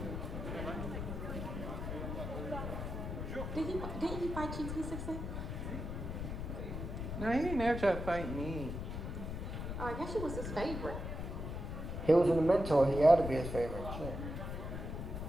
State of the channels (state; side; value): noise; left; rumble, 5 dB below the sound